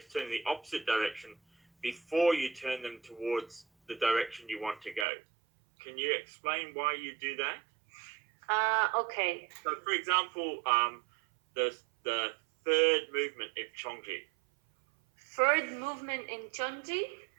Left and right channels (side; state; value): left; drops out; at 5.1 s